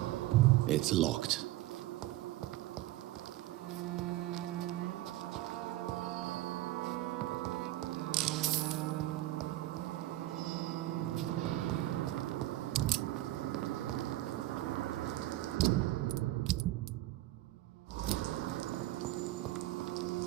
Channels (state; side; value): quieter; left; 16.2 dB